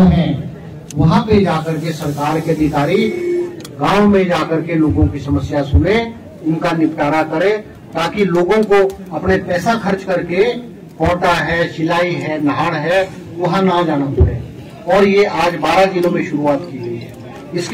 है, वहां पे जाकर के सरकार के अधिकारी गांव में जाकर के लोगों की समस्या सुने, उनका निपटारा करे, ताकि लोगों को अपने पैसा खर्च करके कोटा है, शिलाई है, नाहड़ है, वहां ना जाना पड़े। और ये आज 12 जिलों में शुरुआत की गई है।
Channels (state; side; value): identical; both; correlation 1.00